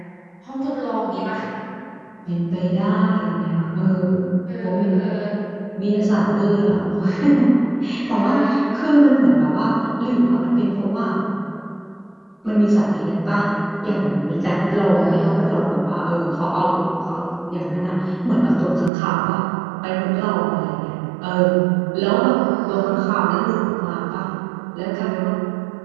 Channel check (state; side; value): drops out; left; at 18.9 s